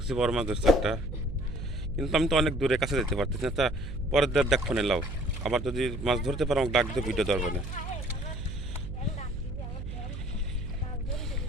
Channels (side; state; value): right; noise; hum, 7 dB below the sound